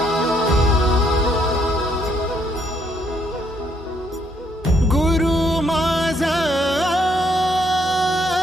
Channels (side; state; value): both; normal; correlation 0.71